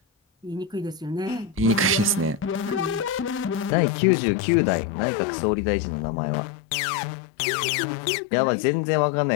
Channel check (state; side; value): drops out; right; at 3.7 s